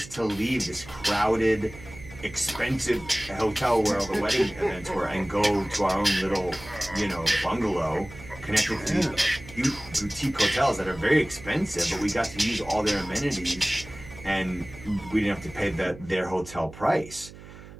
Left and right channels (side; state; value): right; noise; hum, 17 dB below the sound